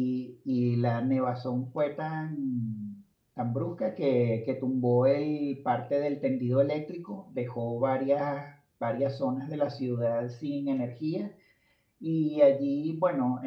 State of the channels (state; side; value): identical; both; correlation 1.00